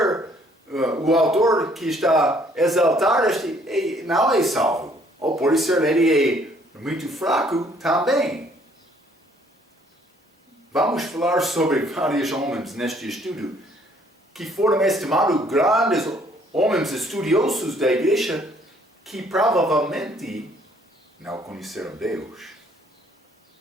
o autor que está a exaltar este não é salvo. Ou por ser ele é muito fraco também. Vamos falar sobre vários homens neste estudo que foram estimados grandes homens estudiosos da igreja que provavelmente não conheceram Deus.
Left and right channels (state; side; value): normal; both; correlation 0.62